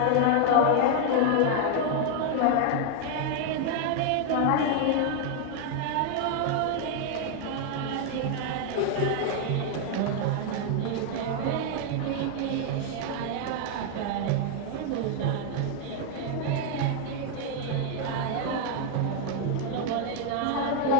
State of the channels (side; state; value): both; different; correlation 0.00